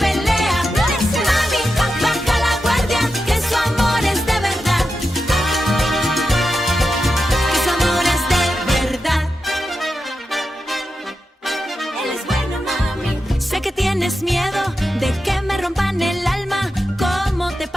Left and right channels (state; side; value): normal; both; correlation 0.89